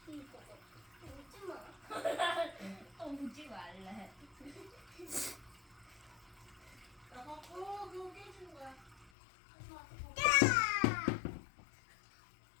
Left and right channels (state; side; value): drops out; right; at 9.1 s